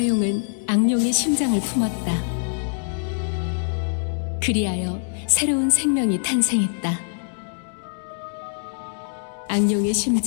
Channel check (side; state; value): right; silent; digital silence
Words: 용은 악룡의 심장을 품었다. 그리하여 새로운 생명이 탄생했다. 악룡의